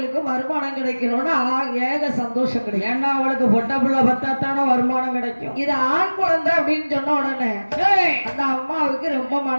வருமானம் கிடைக்கணும்னு ஏக சந்தோஷம் கிடைக்கும். ஏன்னா அவளுக்கு பொட்டை பிள்ளை பத்தாத்தான வருமானம் கிடைக்கும். இது ஆண் குழந்தை அப்படின்னு சொன்ன உடனே அந்த அம்மாவுக்கு ரொம்ப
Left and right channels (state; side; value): inverted; both; correlation -1.00